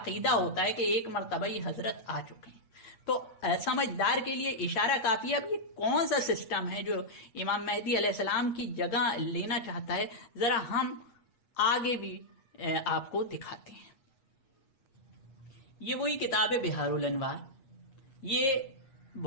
ہوتا ہے کہ ایک مرتبہ ہی حضرت آ چکے ہیں۔ تو سمجھدار کے لیے اشارہ کافی ہے۔ اب یہ کون سا سسٹم ہے جو امام مہدی علیہ السلام کی جگہ لینا چاہتا ہے؟ ذرا ہم آگے بھی آپ کو دکھاتے ہیں۔ یہ وہی کتاب ہے بحار الانوار۔ یہ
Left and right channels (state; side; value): late; right; 8.4 ms